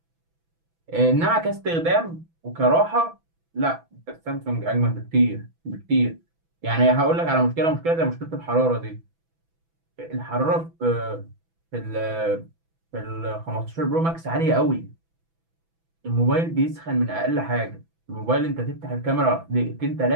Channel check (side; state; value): left; late; 6.0 ms